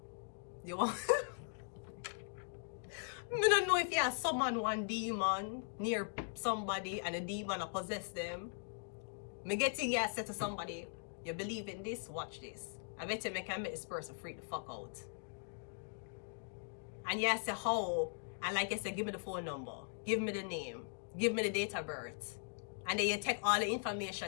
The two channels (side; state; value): right; silent; digital silence